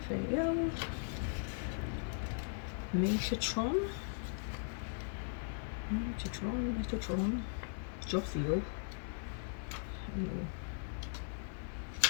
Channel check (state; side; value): silent; right; digital silence